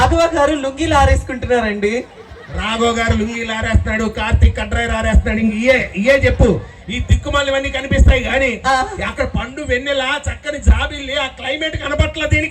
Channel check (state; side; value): identical; both; correlation 1.00